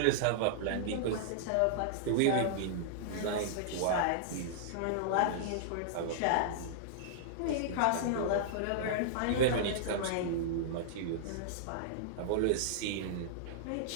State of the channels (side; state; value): both; different; correlation -0.02